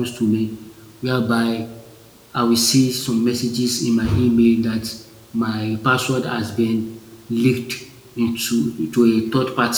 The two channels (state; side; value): identical; both; correlation 1.00